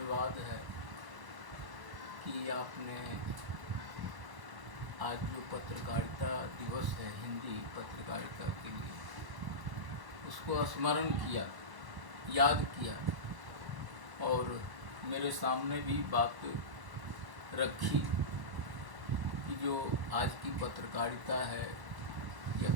है कि आपने आज जो पत्रकारिता दिवस है हिंदी पत्रकारिता के लिए, उसको स्मरण किया, याद किया और मेरे सामने भी बात रखी कि जो आज की पत्रकारिता है या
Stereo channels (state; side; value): late; left; 1.1 ms